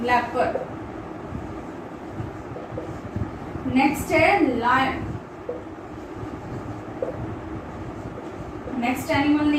लेपर्ड। नेक्स्ट है लायन। नेक्स्ट एनिमल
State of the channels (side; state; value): both; identical; correlation 1.00